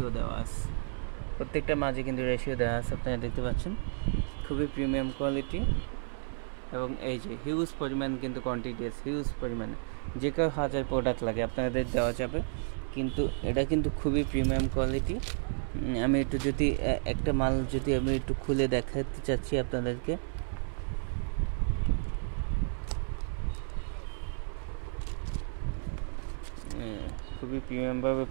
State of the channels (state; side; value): silent; left; 56 dB below the other